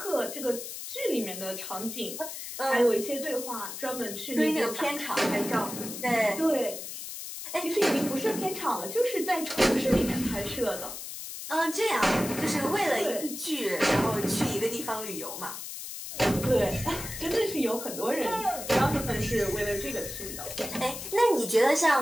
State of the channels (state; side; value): noise; left; hiss, 8 dB below the sound